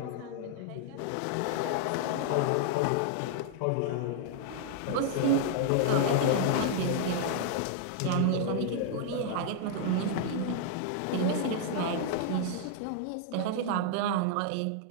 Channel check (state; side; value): different; both; correlation -0.01